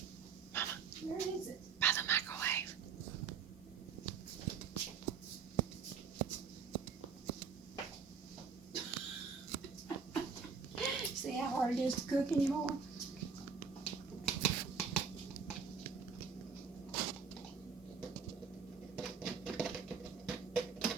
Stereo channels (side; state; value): left; quieter; 5.8 dB